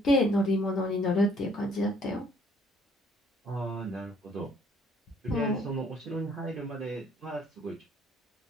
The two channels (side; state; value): both; normal; correlation 0.62